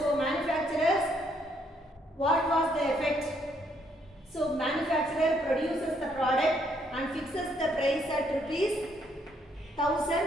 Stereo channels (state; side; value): normal; both; correlation 0.71